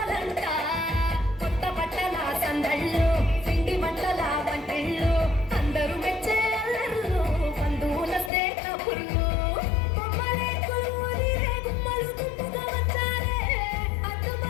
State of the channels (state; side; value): drops out; right; at 8.3 s